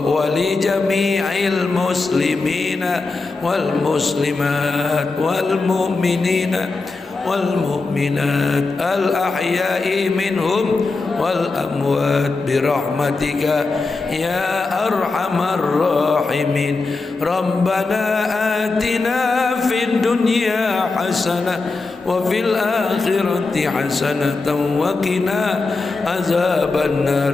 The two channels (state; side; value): quieter; right; 3.7 dB